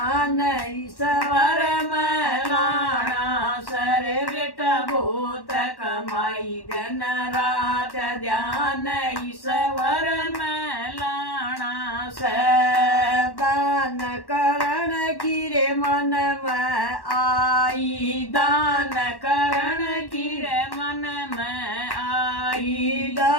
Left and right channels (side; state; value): right; late; 1.1 ms